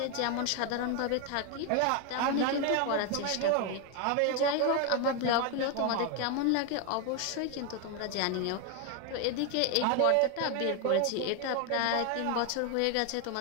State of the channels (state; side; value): different; both; correlation 0.01